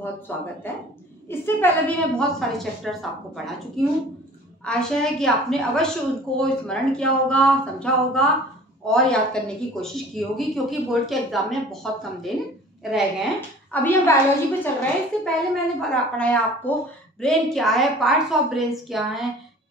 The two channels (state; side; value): normal; both; correlation 0.46